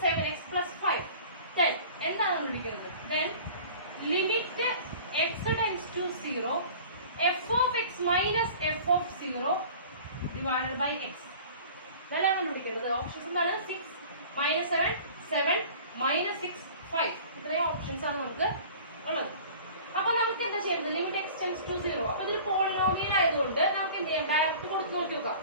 7x plus 5 then എന്താണ് കണ്ടുപിടിക്കുന്നത്? then limit x tends to 0 f of x minus f of 0 divided by x. ഇതാണ് കണ്ടുപിടിക്കുന്നത്. ഓപ്ഷൻസ് എന്താണ്? 6 -7 7 -6 5. ഇത്രയും ഓപ്ഷൻസ് ആണ് നമുക്ക് ഉള്ളത്. അപ്പൊ നമുക്ക് എന്താ ചെയ്യുന്നത്, ലിമിറ്റ് എക്സ് ടെൻസ് ടു 0. അപ്പൊ ഇതൊരു പോളിനോമിയൽ ആയതുകൊണ്ട് നമുക്ക് എന്ത് ചെയ്യാം, ഡയറക്റ്റ് കൊടുത്ത് നോക്കി നോക്കാം.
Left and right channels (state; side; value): inverted; both; correlation -0.43